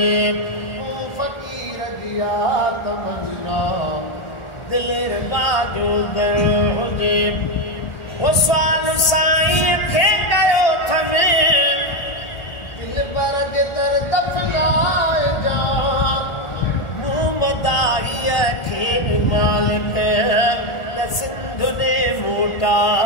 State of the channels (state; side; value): late; right; 1.4 ms